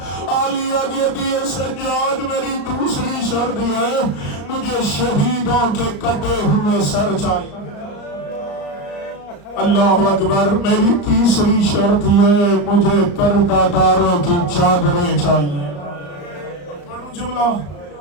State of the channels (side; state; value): right; late; 34 ms